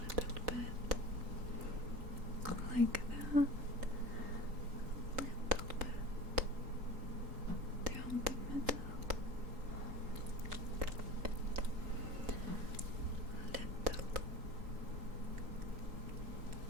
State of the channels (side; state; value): left; late; 3.8 ms